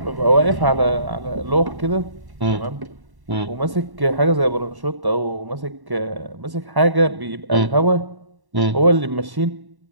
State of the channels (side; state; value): left; late; 1.1 ms